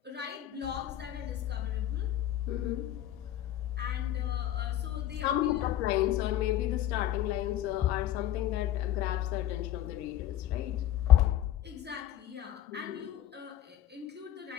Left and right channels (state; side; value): quieter; right; 12.6 dB